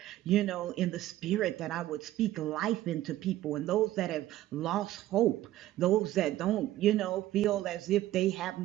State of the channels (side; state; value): left; quieter; 14.6 dB